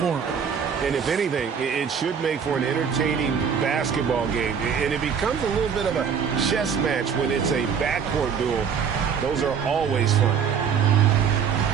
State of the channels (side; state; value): left; quieter; 7.0 dB